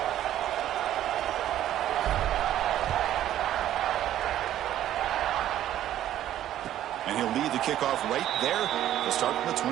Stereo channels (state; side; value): quieter; left; 12.2 dB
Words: And he'll lead the kickoff right there to start from the